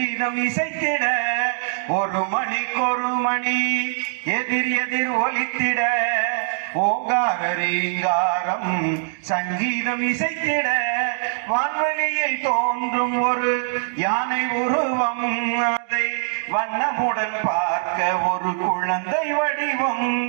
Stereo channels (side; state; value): left; silent; digital silence